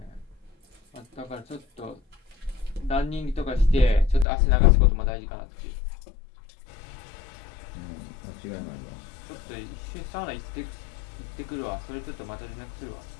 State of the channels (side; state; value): right; drops out; at 4.2 s